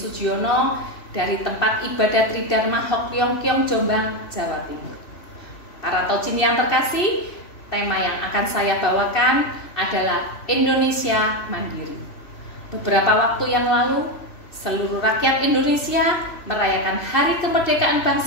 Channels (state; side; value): late; right; 3.1 ms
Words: dari tempat ibadat Tridharma Hok Leong Keong Jombang, Jawa Timur. Para Tojin yang terkasih, tema yang akan saya bawakan adalah Indonesia Mandiri. Beberapa waktu yang lalu, seluruh rakyat Indonesia merayakan Hari Kemerdekaan